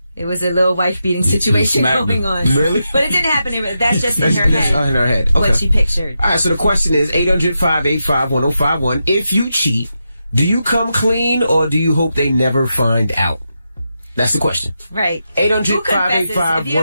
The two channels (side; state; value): both; inverted; correlation -0.87